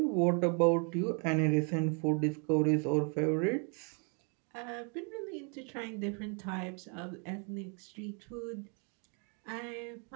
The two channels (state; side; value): quieter; left; 38.1 dB